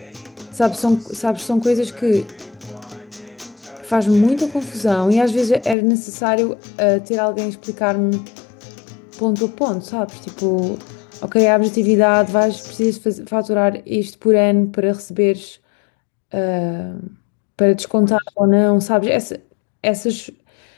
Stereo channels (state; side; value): drops out; right; at 5.8 s